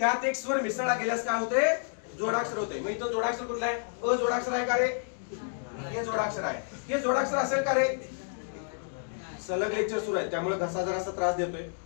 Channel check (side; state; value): right; silent; digital silence